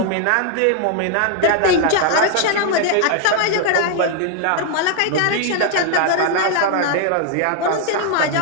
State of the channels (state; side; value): different; both; correlation 0.00